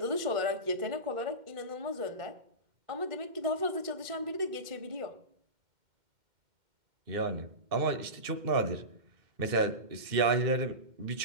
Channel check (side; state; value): left; late; 2.1 ms